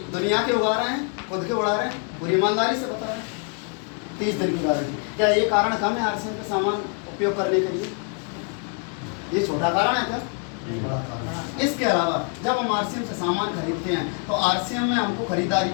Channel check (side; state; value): right; quieter; 38.7 dB